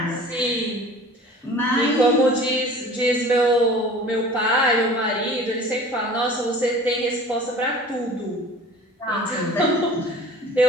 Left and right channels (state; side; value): normal; both; correlation 0.44